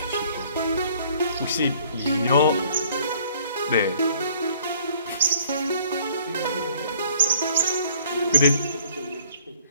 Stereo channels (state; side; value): inverted; both; correlation -0.58